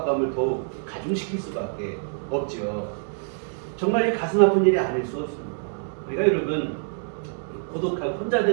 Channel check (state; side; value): silent; left; digital silence